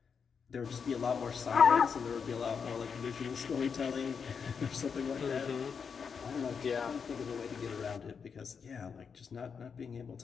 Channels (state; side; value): quieter; right; 6.2 dB